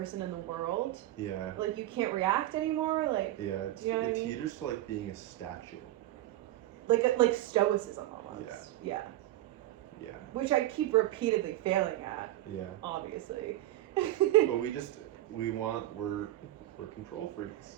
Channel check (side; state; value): left; quieter; 15.0 dB